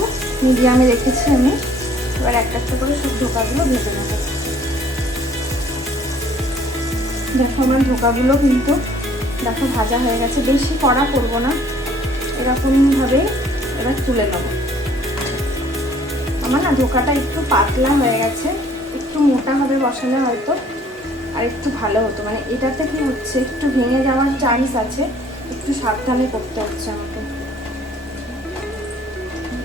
মিডিয়ামে রেখেছি আমি। এবার একটা একটা করে সব ধোকাগুলো ভেজে নেব। দেখো আমার ধোকাগুলো কিন্তু দেখো ভাজা হয়ে গেছে। বেশি কড়া করবো না, এরকমভাবে এবার তুলে নেব। আমার না ধোকাটা একটু পাতলা হয়ে গেছে, একটু মোটা হবে বসালে হয়তো আর একটু ভালো হতো। মানে এটাতে কি হচ্ছে, একটু ভেঙে যাওয়ার চান্স আছে, একটু সাবধানে করতে হচ্ছে আমাকে।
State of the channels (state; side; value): normal; both; correlation 0.58